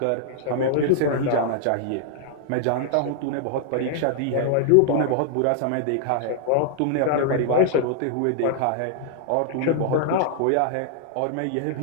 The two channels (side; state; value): both; different; correlation 0.00